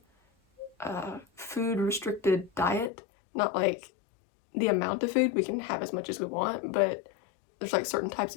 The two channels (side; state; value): right; drops out; at 2.9 s